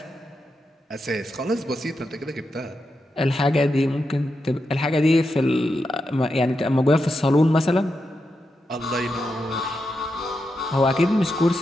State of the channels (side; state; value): both; normal; correlation 0.87